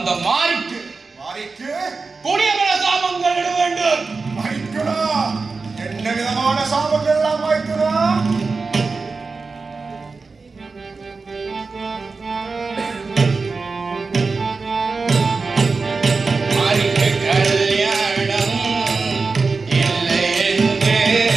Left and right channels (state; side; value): quieter; left; 4.2 dB